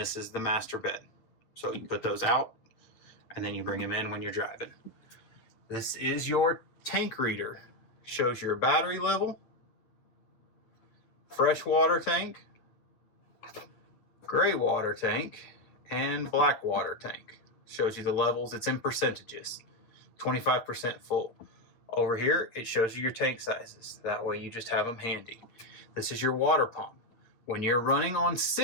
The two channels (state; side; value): late; right; 9.0 ms